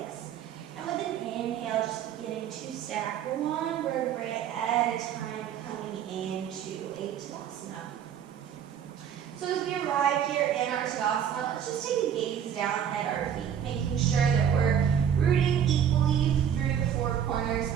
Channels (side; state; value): left; quieter; 8.8 dB